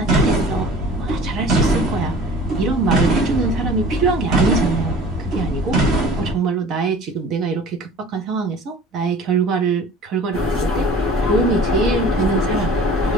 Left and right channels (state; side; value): normal; both; correlation 0.44